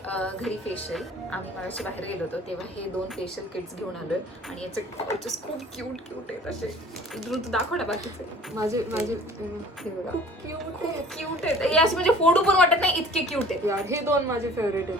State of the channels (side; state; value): both; normal; correlation 0.48